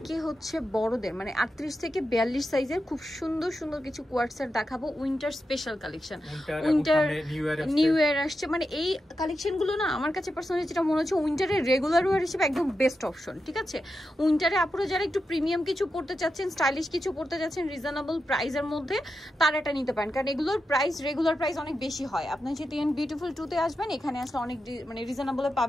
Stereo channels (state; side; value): normal; both; correlation 0.89